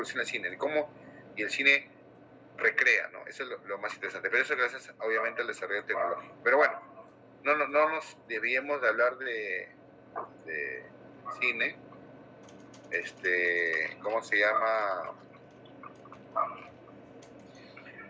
el cine, y el cine recrea, ¿no? Eso es lo más interesante, pero eso gracias obviamente al desarrollo tecnológico. Pero bueno, no nos debíamos de hablar de cine, ¿cómo se llama?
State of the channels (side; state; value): both; identical; correlation 1.00